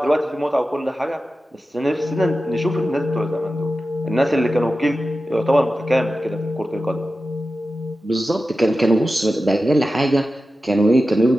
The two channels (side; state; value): both; normal; correlation 0.93